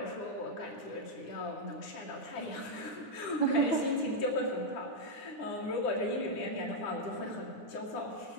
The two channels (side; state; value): right; late; 9.9 ms